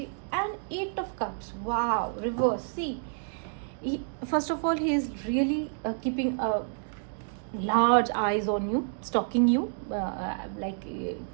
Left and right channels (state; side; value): silent; left; digital silence